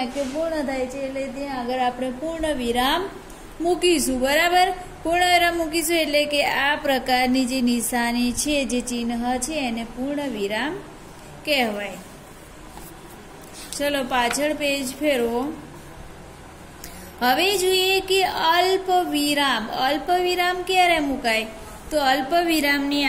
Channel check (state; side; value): identical; both; correlation 1.00